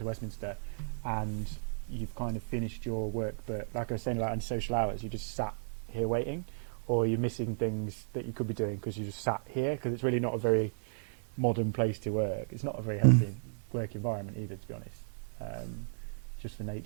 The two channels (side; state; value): left; silent; digital silence